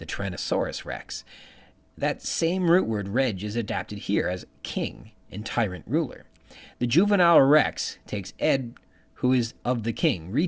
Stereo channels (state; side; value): identical; both; correlation 1.00